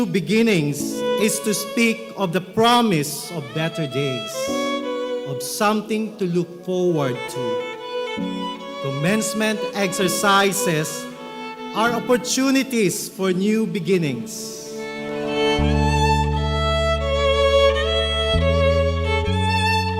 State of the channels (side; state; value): both; identical; correlation 1.00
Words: beginnings is to speak of the promise of better days, of something to look forward to. Commencement exercises are opportunities for new beginnings.